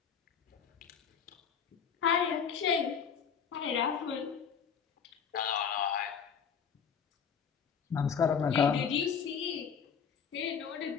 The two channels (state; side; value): quieter; right; 7.0 dB